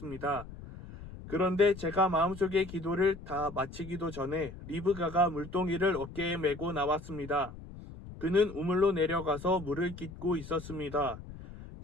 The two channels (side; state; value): left; noise; rumble, 14 dB below the sound